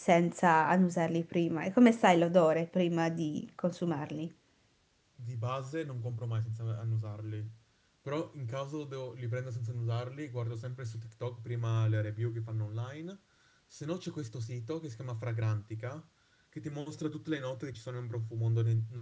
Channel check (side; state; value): both; identical; correlation 1.00